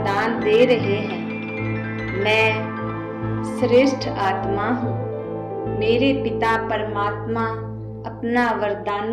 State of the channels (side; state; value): both; identical; correlation 1.00